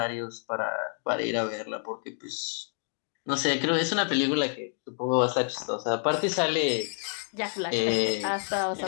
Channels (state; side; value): silent; right; 59 dB below the other